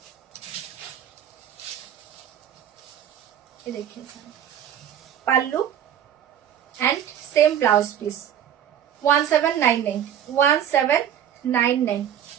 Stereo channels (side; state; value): left; quieter; 9.8 dB